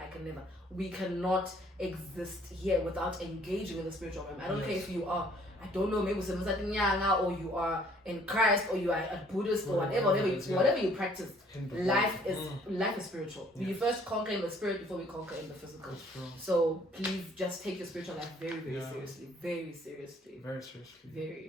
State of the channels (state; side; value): normal; both; correlation 0.59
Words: We cannot exist here without engaging in the spiritual realm. I don't care if you are, I don't know, maybe or you are in Christ, or you are a Buddhist, or whatever you practice. Life is spiritual. We first conquer in the spirit before we conquer in the physical. So please just take your spiritual life very, very seriously. Very seriously. Very